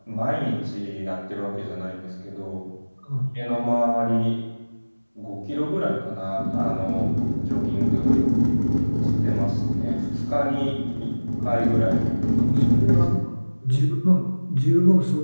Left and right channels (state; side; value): inverted; both; correlation -1.00